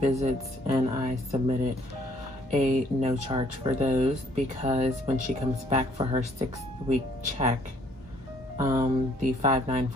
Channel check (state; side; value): normal; both; correlation 0.62